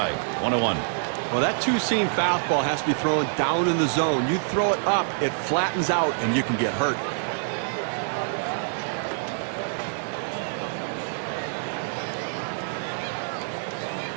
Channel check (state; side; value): silent; left; 59 dB below the other